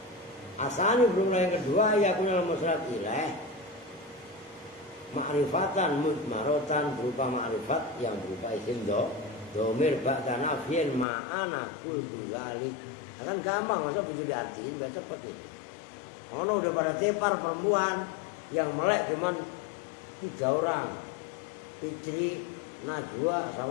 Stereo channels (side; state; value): right; drops out; at 11.1 s